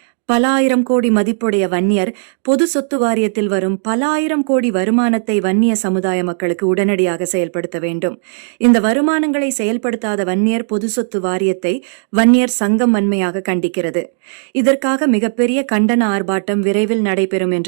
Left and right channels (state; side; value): silent; left; digital silence